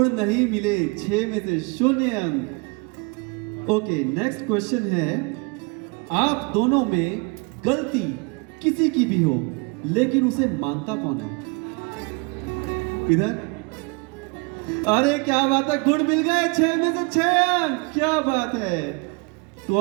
नहीं मिले, 6 में से 0 अंक। ओके, नेक्स्ट क्वेश्चन है, आप दोनों में गलती किसी की भी हो लेकिन उसे मानता कौन है? इधर अरे क्या बात है, गुड मिल गए, 6 में से 6 अंक, क्या बात है। तो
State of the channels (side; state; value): left; quieter; 30.9 dB